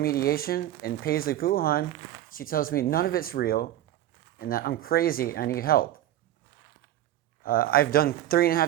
and Paisley Puhan, she tells me none of it's real and that I'm crazy, I need help. I've done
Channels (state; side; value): quieter; left; 13.0 dB